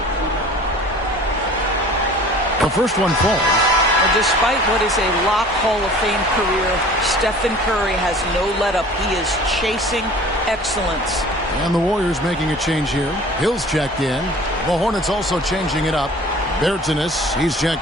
The first one falls. Despite what is a lock Hall of Fame career, Stephen Curry has no let-up. He is chasing excellence. And the Warriors making a change here. Hill's checked in. The Hornets also changing it up. Bertanis, he's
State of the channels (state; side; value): normal; both; correlation 0.46